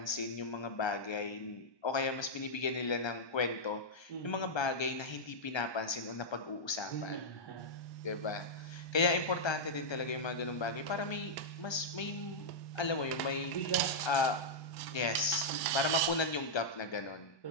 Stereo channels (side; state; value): right; late; 1.3 ms